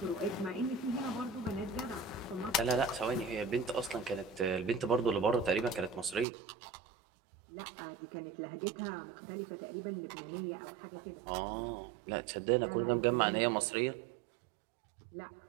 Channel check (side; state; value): left; drops out; at 6.2 s